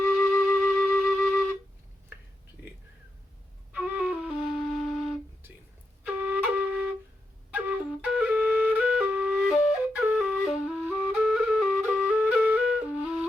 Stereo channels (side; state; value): both; normal; correlation 0.86